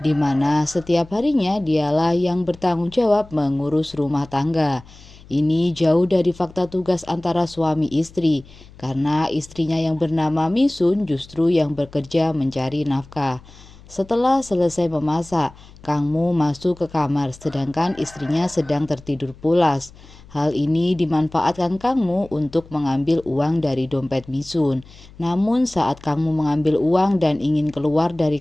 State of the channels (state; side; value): noise; left; hum, 22 dB below the sound